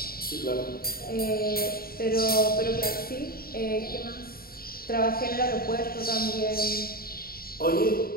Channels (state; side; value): late; right; 0.43 ms